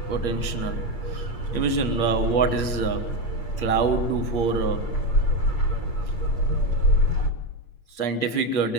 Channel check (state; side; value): late; right; 8.5 ms